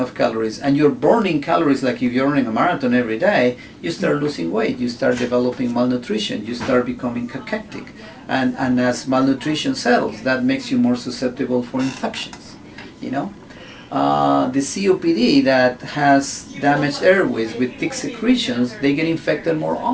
calories and you're burning calories like if you're running a marathon every day, you start losing weight, you start developing malnutrition, you start becoming cachectic, and as malnutrition settles, that makes you more susceptible for infections. The COPD that has damaged airways with thick secretions, they get infected more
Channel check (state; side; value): identical; both; correlation 1.00